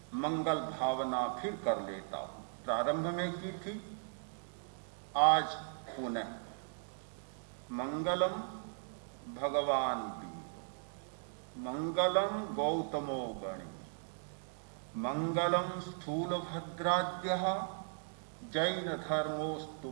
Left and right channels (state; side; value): silent; left; digital silence